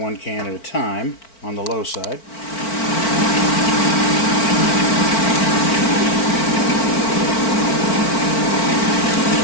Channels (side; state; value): right; late; 4.5 ms